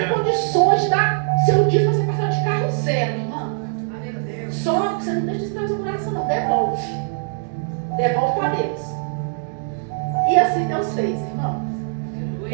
condições de dar seu dízimo para você passar de carro zero, irmã. Só que você não deixa isso no seu coração, não. Devolve para Deus. E assim Deus fez, irmão.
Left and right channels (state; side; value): silent; left; digital silence